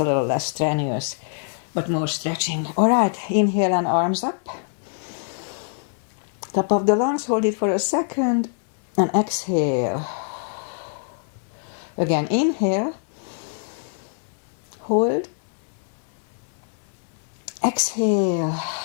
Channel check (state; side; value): silent; right; digital silence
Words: a little less strenuous, but more stretching. All right, inhale and arms up. Top of the lungs, hold it for a second. And exhale. Again, inhale. Hold. Exhale.